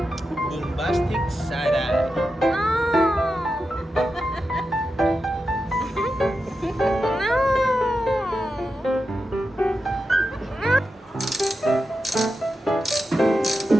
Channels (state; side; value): normal; both; correlation 0.89